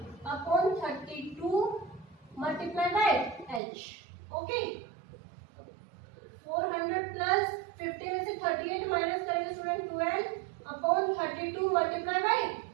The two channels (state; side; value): drops out; left; at 3.6 s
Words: upon 32 multiply by H। Okay, 400 plus 50 में से 38 माइनस करेंगे student 12 upon 32 multiply by